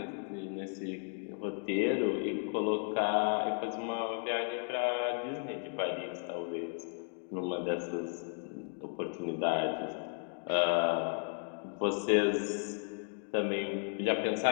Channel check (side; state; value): right; silent; 55 dB below the other